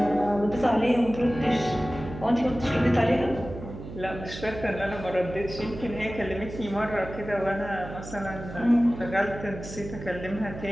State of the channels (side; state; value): right; noise; hum, 11 dB below the sound